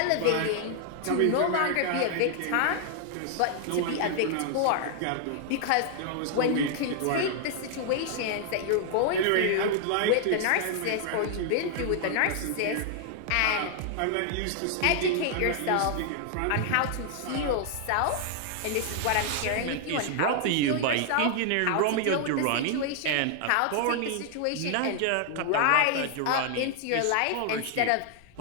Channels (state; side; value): different; both; correlation 0.00